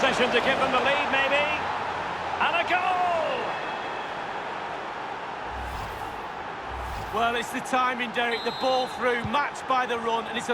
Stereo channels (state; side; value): identical; both; correlation 1.00